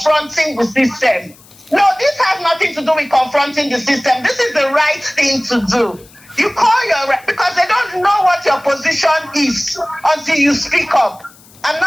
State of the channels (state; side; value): noise; left; hiss, 26 dB below the sound